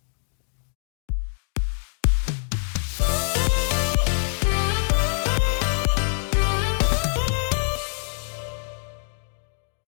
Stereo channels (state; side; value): silent; right; 62 dB below the other